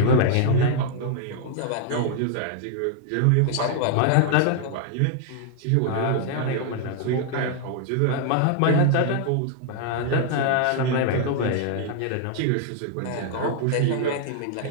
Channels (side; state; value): both; different; correlation 0.00